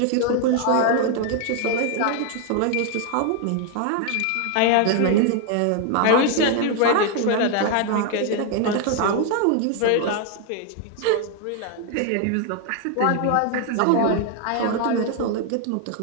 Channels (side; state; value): both; different; correlation 0.01